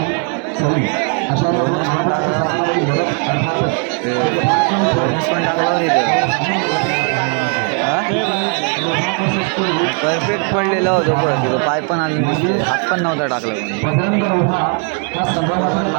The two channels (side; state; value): left; quieter; 38.5 dB